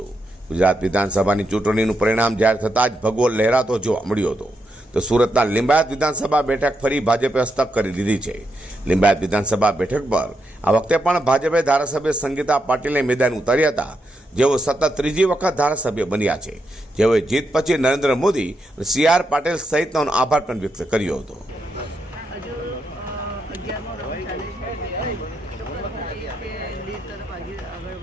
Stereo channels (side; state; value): both; normal; correlation 0.83